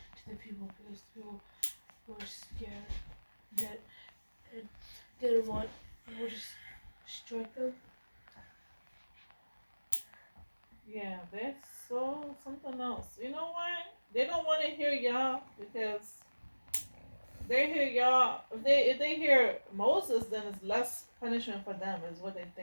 the people because the people were scared that and didn't want people to strike them. Yeah, that's so something else. You know why? They don't want to hear y'all because they hear y'all. If they hear Moses, then it's less punishment for them. Is what they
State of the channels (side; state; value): both; inverted; correlation -1.00